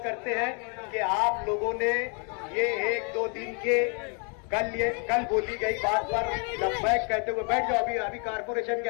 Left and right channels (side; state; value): right; quieter; 36.5 dB